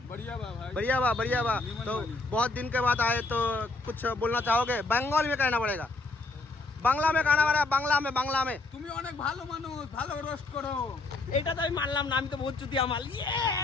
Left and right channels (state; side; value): quieter; right; 3.3 dB